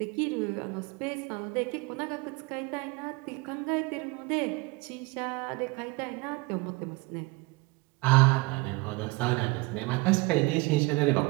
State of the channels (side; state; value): left; quieter; 24.5 dB